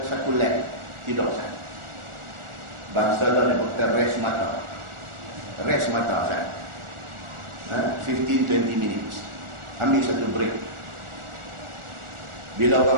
lap tidur saat. Bangsa dah ni kata rest mata. Rest mata saat. 15-20 minutes. Ambil satu break. Bila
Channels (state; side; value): late; left; 1.4 ms